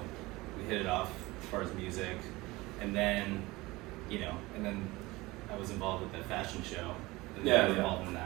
we hit it off as far as music, and then, you know, I was involved with the fashion show. And I was involved in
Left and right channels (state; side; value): quieter; left; 21.1 dB